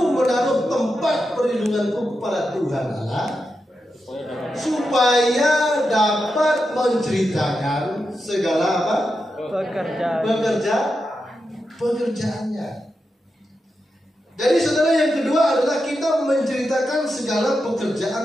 menaruh tempat perlindunganku kepada Tuhan Allah, supaya dapat menceritakan segala apa? Pekerjaannya. Jadi saudara, yang kedua adalah kita menceritakan segala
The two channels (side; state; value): both; normal; correlation 0.88